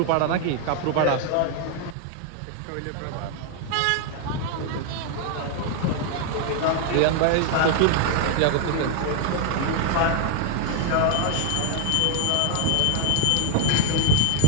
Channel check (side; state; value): both; different; correlation 0.00